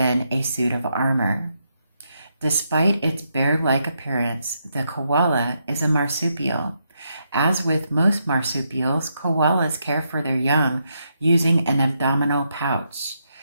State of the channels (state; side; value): inverted; both; correlation -0.80